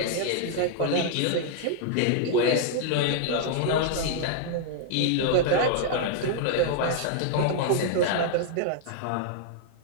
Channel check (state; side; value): different; both; correlation -0.01